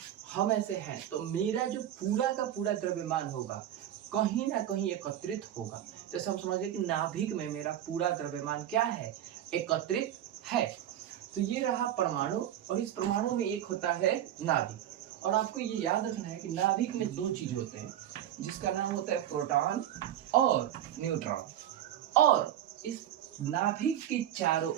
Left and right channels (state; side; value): quieter; left; 11.5 dB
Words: हम ऐसे हैं तो मेरा जो पूरा का पूरा द्रव्यमान होगा कहीं ना कहीं एकत्रित होगा। जैसे हम समझ गए कि नाभिक में मेरा पूरा द्रव्यमान क्या है, एकत्रित है। तो ये रहा परमाणु और इस परमाणु में एक होता है नाभिक। और आपको ये याद रखना है कि नाभिक में दो चीज होते हैं जिसका नाम होता है प्रोटॉन और न्यूट्रॉन। और इस नाभिक के चारों